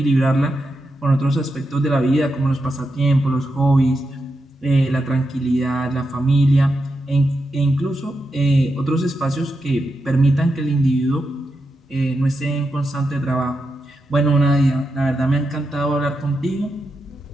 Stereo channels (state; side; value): normal; both; correlation 0.87